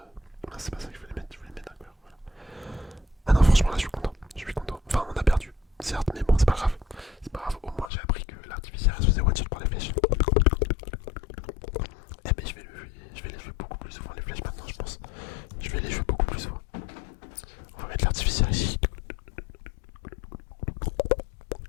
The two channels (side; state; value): right; drops out; at 7.9 s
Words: non, c'est pas ça que je voulais mettre un cœur. Voilà. Ah non, franchement, là, je suis content. Enfin, on a perdu, certes, mais bon, c'est pas grave. Au moins, j'ai appris que l'artificiel se faisait one shot par les flèches. Eh ben, je vais les jouer beaucoup plus souvent, les flèches, maintenant, je pense. Je vais les jouer beaucoup plus souvent. On va mettre l'artificiel ici.